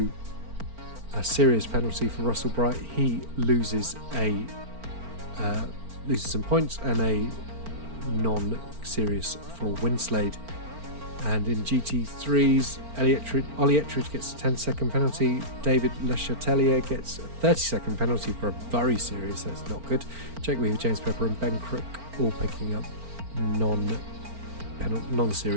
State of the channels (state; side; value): late; left; 4.4 ms